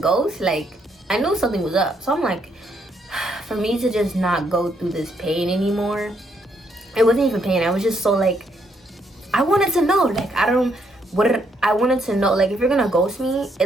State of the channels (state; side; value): normal; both; correlation 0.74